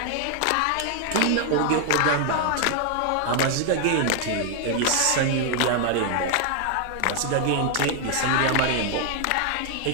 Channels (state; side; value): different; both; correlation 0.00